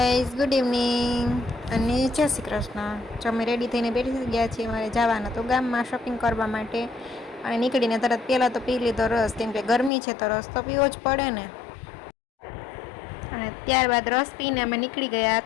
ગુડ ઇવનિંગ અને જય શ્રી કૃષ્ણ. જો અમે રેડી થઈને બેઠી ગયા છીએ મારે જવાના તો ગામમાં શોપિંગ કરવા માટે. અને નીકળીને તરત પહેલાં તો પી લીધો રસ, કેમ કે ગરમી છે તો રસ તો પીવો જ પડે ને. અને ત્યારબાદ રસ પીને અમે નીકળી ગયા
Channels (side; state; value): right; drops out; at 9.9 s